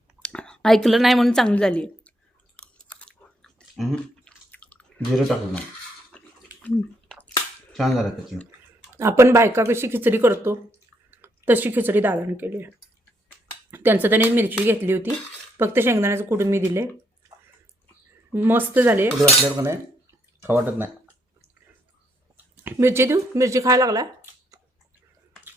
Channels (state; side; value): normal; both; correlation 0.74